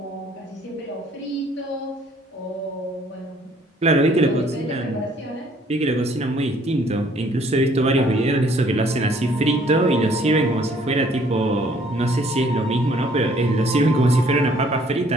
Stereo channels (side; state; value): both; normal; correlation 0.60